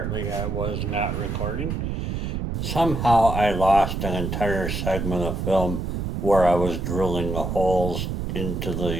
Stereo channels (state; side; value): noise; right; rumble, 2 dB below the sound